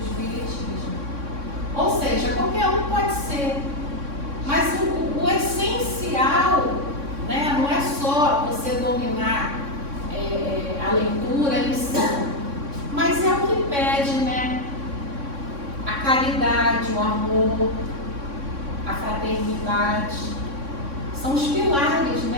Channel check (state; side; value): late; left; 3.6 ms